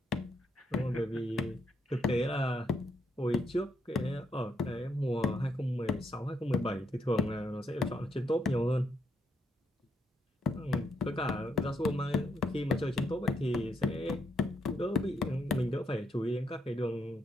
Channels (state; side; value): normal; both; correlation 0.77